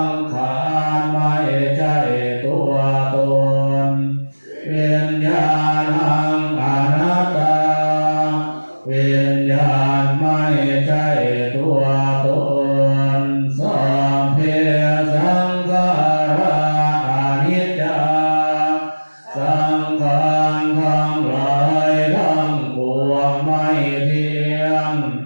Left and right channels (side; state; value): both; inverted; correlation -1.00